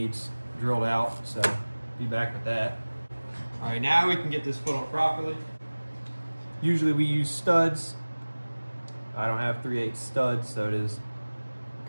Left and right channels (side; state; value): both; inverted; correlation -1.00